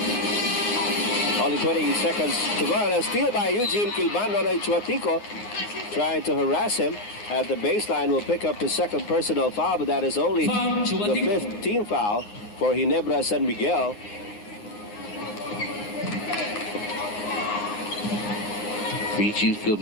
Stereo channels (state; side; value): late; right; 9.6 ms